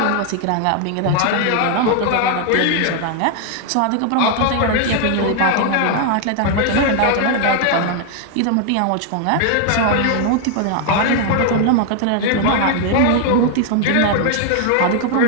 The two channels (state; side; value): different; both; correlation 0.00